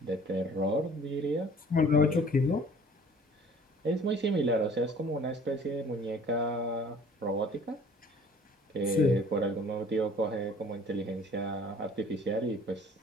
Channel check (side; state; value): both; normal; correlation 0.51